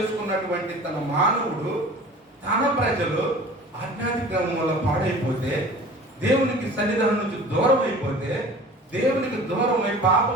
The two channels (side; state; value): both; normal; correlation 0.43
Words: తన మానవుడు తన ప్రజలు ఆజ్ఞాతిక్రమం వల్ల పాడైపోతే, దేవునికి సన్నిధానం నుంచి దూరం అయిపోతే, దేవునికి దూరమై